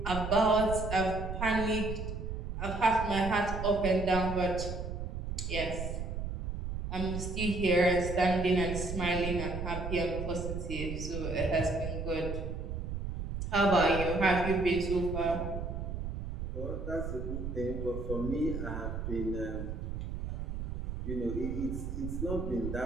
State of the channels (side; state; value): right; noise; rumble, 5 dB below the sound